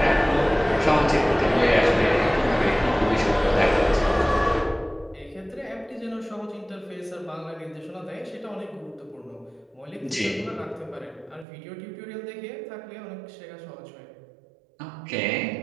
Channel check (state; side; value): drops out; left; at 11.5 s